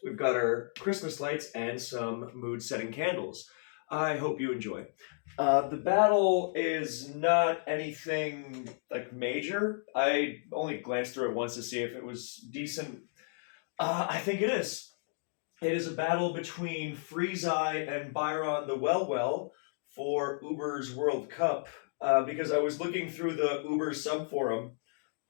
We've got our Christmas lights and some mood setting candles. I hope you enjoy. The battle is not anything like major. I only glanced through it once to see if it was decent. I think it is. It is a battle between freezai and byronthewellwell for Uber's World Cup. Because I was looking through the Uber sub forum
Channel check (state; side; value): silent; right; digital silence